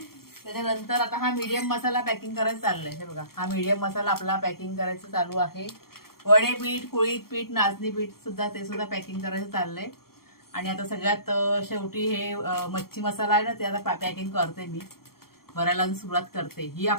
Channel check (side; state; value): right; late; 0.94 ms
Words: त्याच्यानंतर आता हा मीडियम मसाला पॅकिंग करायचं चाललंय. हे बघा, हा मीडियम मसाला आपला पॅकिंग करायचं चालू आहे. वडे पीठ, कुळीत पीठ, नाचणी पीठ सुद्धा, ते सुद्धा पॅकिंग करायचं चाललंय. आणि आता सगळ्यात शेवटी हे मच्छी मसाला आहे ना, ते आता पॅकिंग करते मी, भरायला सुरुवात करते. ही